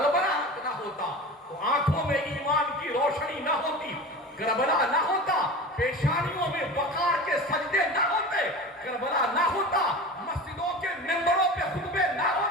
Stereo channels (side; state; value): both; normal; correlation 0.32